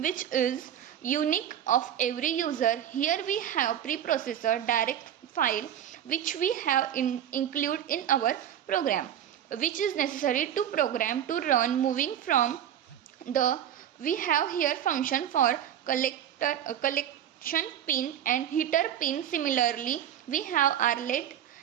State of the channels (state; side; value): quieter; left; 10.3 dB